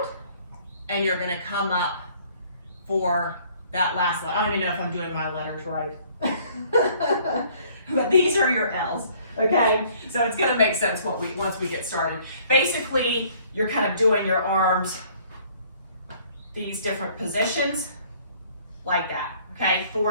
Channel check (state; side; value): inverted; both; correlation -0.58